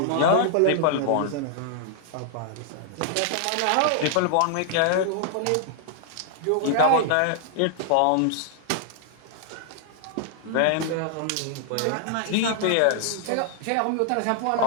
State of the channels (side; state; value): both; different; correlation -0.01